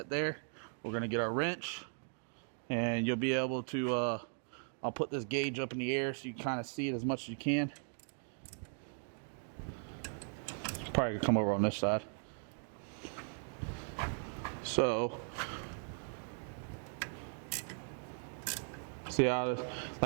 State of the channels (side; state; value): left; silent; 52 dB below the other